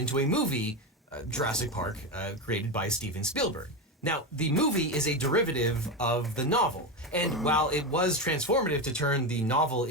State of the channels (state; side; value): normal; both; correlation 0.16